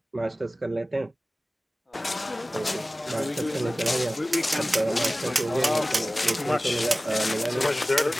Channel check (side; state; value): both; normal; correlation 0.97